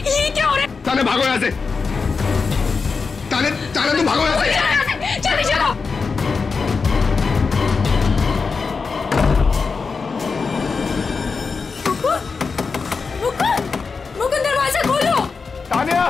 क्या हो रहा है? तान्या भागो यहाँ से। तान्या तुम भागो यहाँ से। जल्दी चलो। मुकुंद, दरवाजा खोलो। Tanya,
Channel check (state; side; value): quieter; right; 4.9 dB